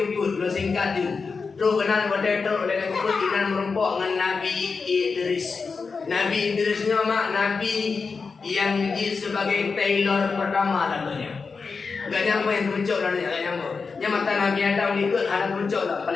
kubur. Belum singkat tu. Terus kenal pada tu. Lagi kubur. Ina merempok dengan Nabi Idris. Nabi Idrisnya mak Nabi yang sebagai tailor pertama namanya. Gak nyampe yang kemencok dah ni. Gak nyampe. Yang mata Nabi Adam ikut anak kemencok lah.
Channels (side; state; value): right; quieter; 4.8 dB